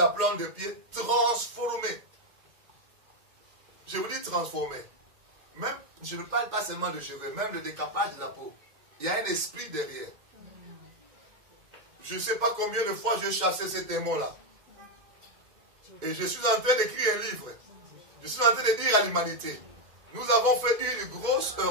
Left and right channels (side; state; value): left; late; 2.1 ms